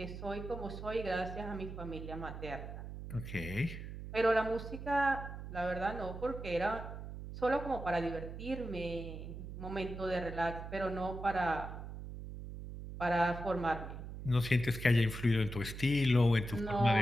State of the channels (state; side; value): noise; right; hum, 9 dB below the sound